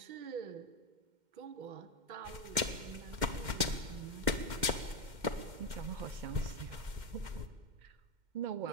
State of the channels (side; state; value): left; late; 2.1 ms